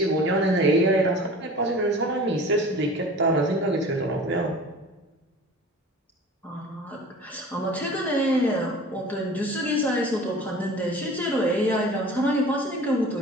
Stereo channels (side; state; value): both; normal; correlation 0.42